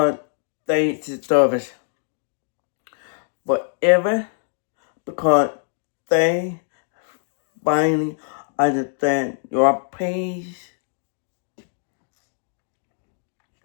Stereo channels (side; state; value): right; silent; digital silence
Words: they deserve it. Forever because they finally understand your pain.